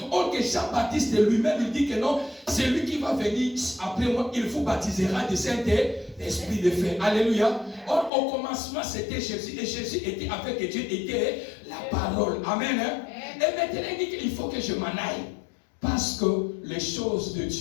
Or que Jean-Baptiste lui-même, il dit que non, c'est lui qui va venir après moi, il vous baptisera du Saint-Esprit de feu. Alléluia. Or, au commencement, c'était Jésus. Et Jésus était avec Dieu, était la parole. Amen. Hein? Et maintenant, il dit qu'il faut que je m'en aille. Parce que les choses de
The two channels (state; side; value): drops out; right; at 8.1 s